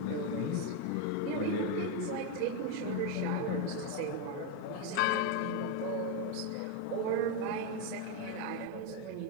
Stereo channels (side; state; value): both; different; correlation 0.02